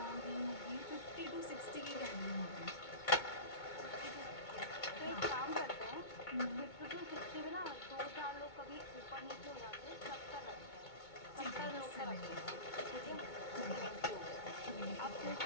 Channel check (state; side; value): late; right; 2.2 ms